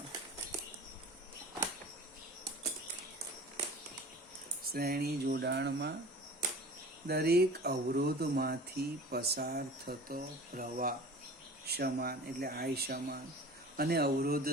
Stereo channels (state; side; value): normal; both; correlation 0.40